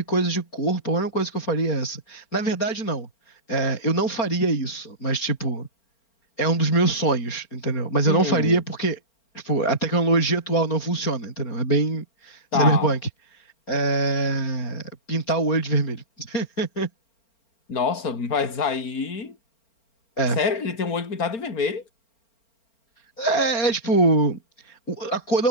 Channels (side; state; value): right; late; 4.4 ms